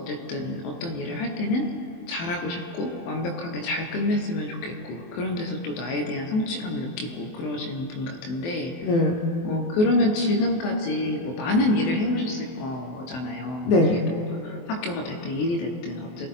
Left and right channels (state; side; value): late; right; 23 ms